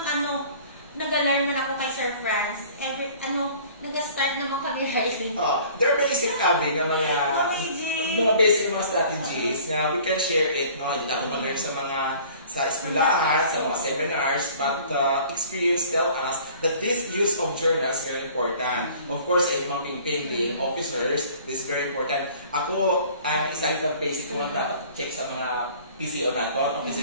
nag-alarm na ako kay Sir Franz. Nag-start naman kami writing. There are basic mga basic mga strategies na we can share it, no? Hindi natin mag-learn sa eskwelahan, sa mga seminars, but experience tell us that this use of journals is very important. Of course, ay mga being officers, this is very important. Ako, ang isang basic ko nga dapat check sa mga PCO nato,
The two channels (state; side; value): inverted; both; correlation -0.50